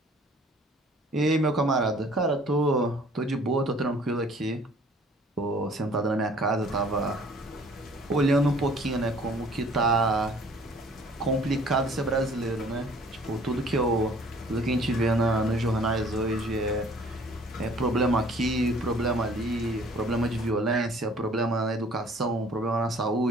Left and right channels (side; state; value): both; normal; correlation 0.54